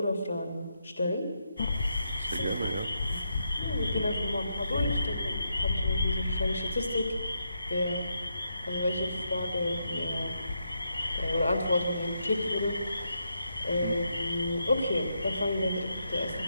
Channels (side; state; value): both; inverted; correlation -0.81